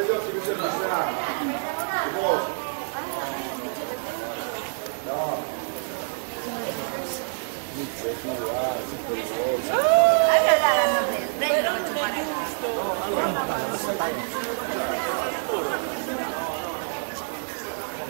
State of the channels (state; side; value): silent; left; 56 dB below the other